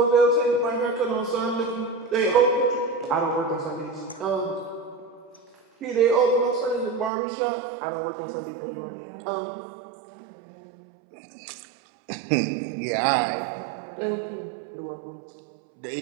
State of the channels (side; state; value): left; drops out; at 7.1 s